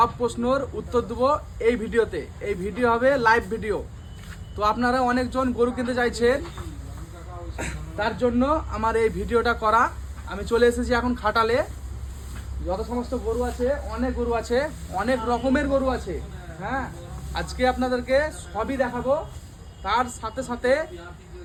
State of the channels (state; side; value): identical; both; correlation 1.00